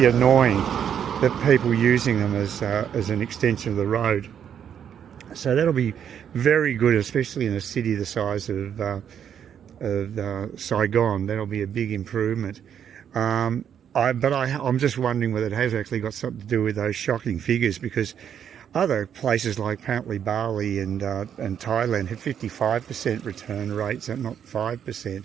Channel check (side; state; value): left; quieter; 8.7 dB